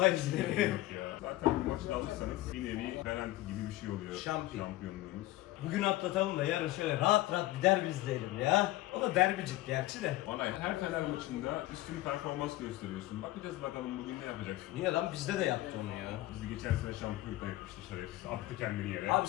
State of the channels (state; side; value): quieter; right; 17.0 dB